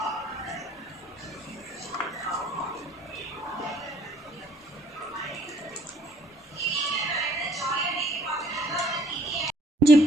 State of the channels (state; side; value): normal; both; correlation 0.60